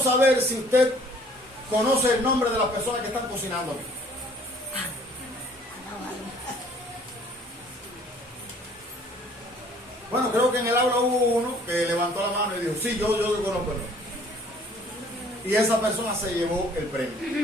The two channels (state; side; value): normal; both; correlation 0.56